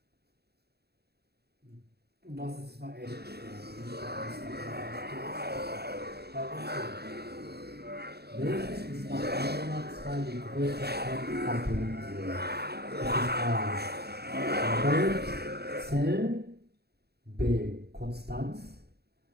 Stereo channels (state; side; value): late; left; 0.47 ms